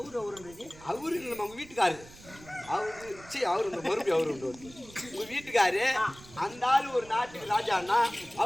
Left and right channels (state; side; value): noise; right; rumble, 20 dB below the sound